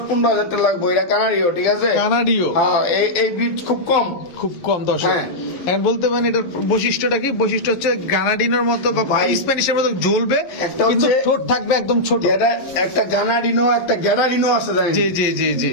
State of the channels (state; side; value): late; right; 11 ms